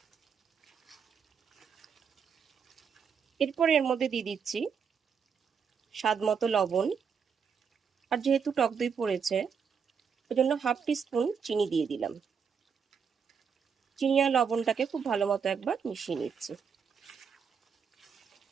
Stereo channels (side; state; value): left; quieter; 6.6 dB